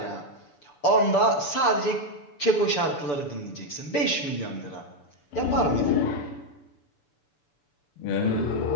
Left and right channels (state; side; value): late; right; 6.9 ms